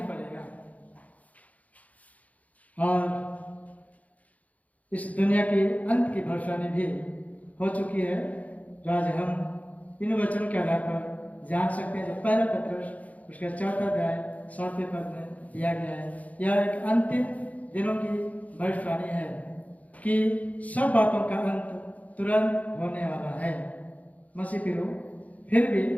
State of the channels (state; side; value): late; right; 0.071 ms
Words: पड़ेगा। और इस दुनिया की अंत की भविष्यवाणी भी हो चुकी है, जो आज हम इन वचनों के आधार पर जान सकते हैं। जो पहला पत्रस उसका 4 अध्याय 7वें पद में दिया गया है, यह एक अंतिम दिनों की भविष्यवाणी है कि सब बातों का अंत तुरंत होने वाला है। मसीह प्रियो, फिर भी